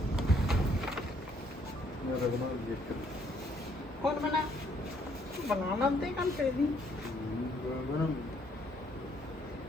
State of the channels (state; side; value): normal; both; correlation 0.67